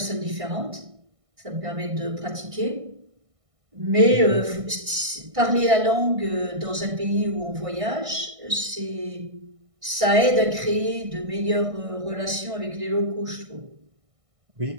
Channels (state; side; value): late; left; 1.6 ms